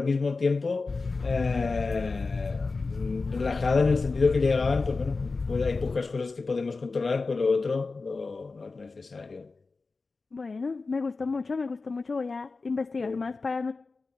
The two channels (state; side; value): quieter; right; 4.0 dB